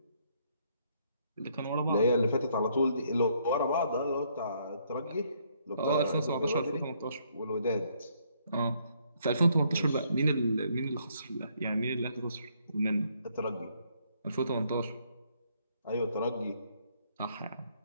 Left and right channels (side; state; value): both; inverted; correlation -0.69